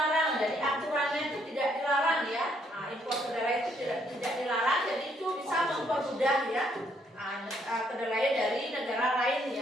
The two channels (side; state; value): both; normal; correlation 0.70